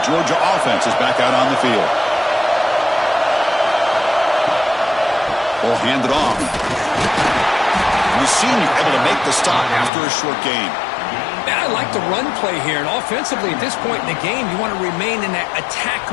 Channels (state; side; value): drops out; right; at 9.9 s